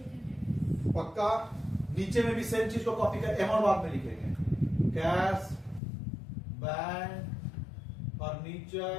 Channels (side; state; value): right; drops out; at 5.8 s